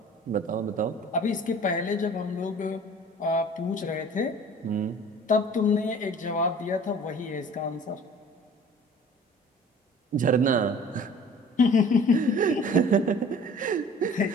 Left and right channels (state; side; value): normal; both; correlation 0.47